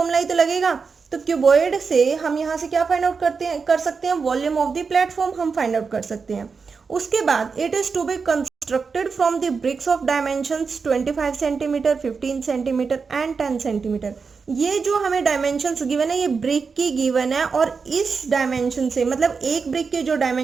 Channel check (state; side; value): quieter; left; 5.2 dB